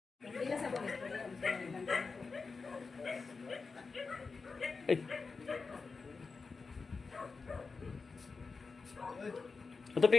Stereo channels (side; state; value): right; quieter; 4.5 dB